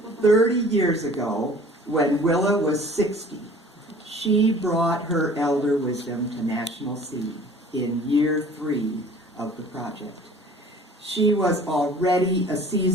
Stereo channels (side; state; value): both; normal; correlation 0.48